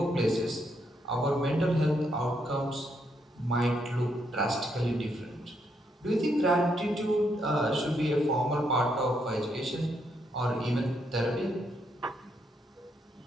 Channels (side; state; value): both; normal; correlation 0.77